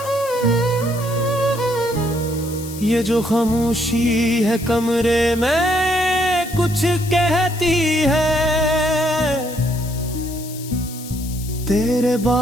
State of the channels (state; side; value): noise; left; hiss, 14 dB below the sound